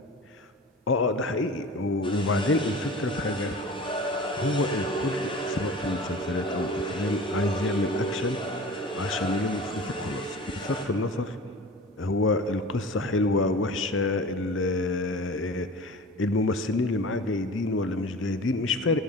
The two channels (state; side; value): normal; both; correlation 0.38